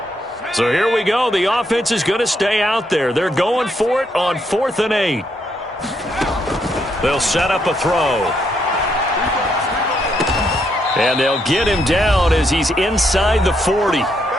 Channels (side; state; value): both; normal; correlation 0.76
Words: So here we go. The offense is going to stay out there. They're going for it on 4th and 8. They'll set up a throw. And they'll get him down as he's inside the 40.